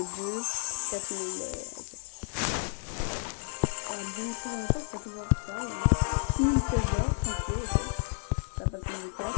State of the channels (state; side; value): silent; right; digital silence